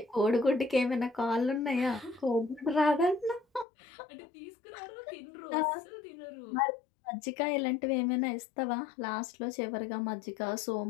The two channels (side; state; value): right; drops out; at 3.7 s